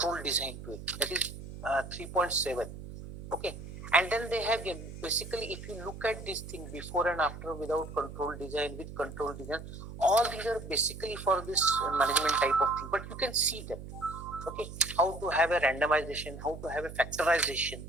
design to it. That is 3.7. Okay, and then they have basically, if you look at this thing before and after, without control design, with control design, all these are basically for this management type of thing, but you can see them. Okay, how to have a randomization, how to have a factorization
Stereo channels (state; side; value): noise; right; hum, 11 dB below the sound